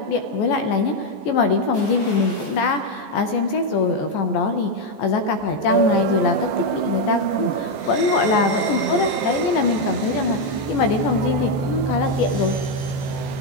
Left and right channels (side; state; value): right; late; 14 ms